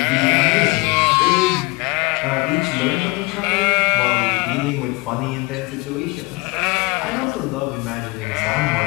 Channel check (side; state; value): right; quieter; 25.8 dB